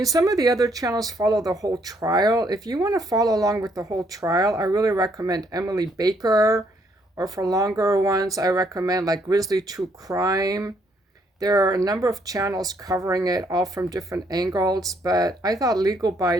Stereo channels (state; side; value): normal; both; correlation 0.70